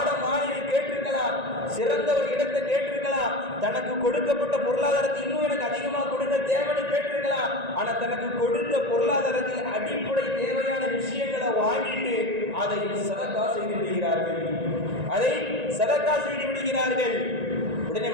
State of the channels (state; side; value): late; left; 1.9 ms